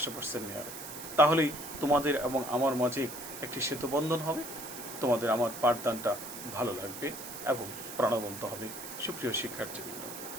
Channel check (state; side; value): noise; right; hiss, 10 dB below the sound